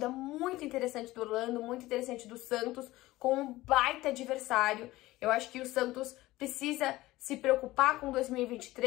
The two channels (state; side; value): quieter; right; 17.9 dB